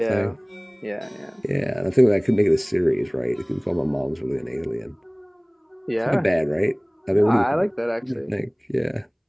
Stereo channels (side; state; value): both; identical; correlation 1.00